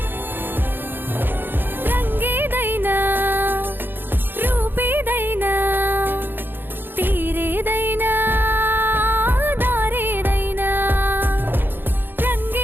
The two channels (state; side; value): late; left; 0.097 ms